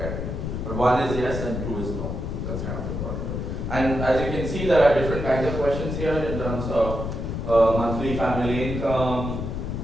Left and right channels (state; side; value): noise; left; rumble, 4 dB below the sound